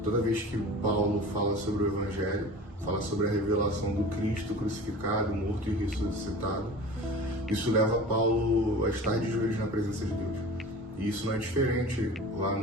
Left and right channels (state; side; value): normal; both; correlation 0.38